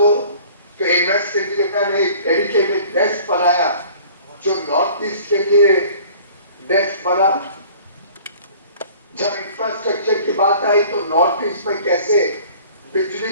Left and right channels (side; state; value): both; inverted; correlation -0.49